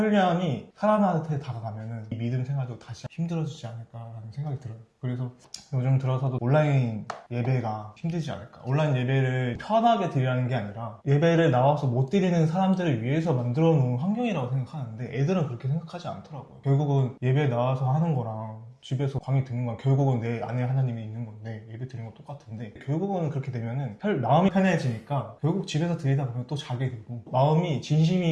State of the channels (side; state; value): both; identical; correlation 1.00